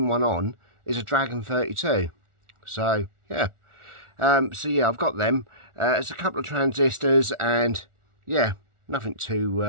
one on is a Dragon 32. So yeah, I've got them. There's a couple of transistors, and yeah, nothing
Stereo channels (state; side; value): late; left; 1.4 ms